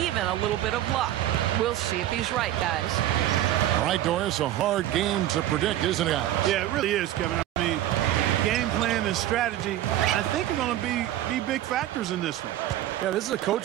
a little bit of luck. We'll see if he's right, guys. All right, Doris, a hard game to predict, isn't it? Yeah, it really is, Kevin. I mean, game plan and strategy, I think, are going to be big factors in this one. Yeah, this is a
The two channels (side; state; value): left; quieter; 13.2 dB